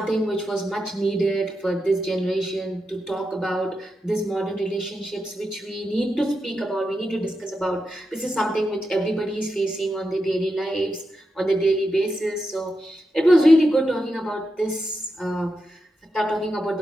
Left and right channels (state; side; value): normal; both; correlation 0.87